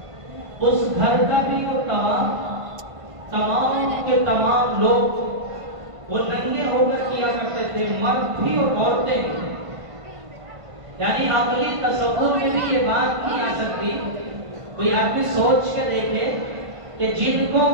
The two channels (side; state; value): left; late; 1.5 ms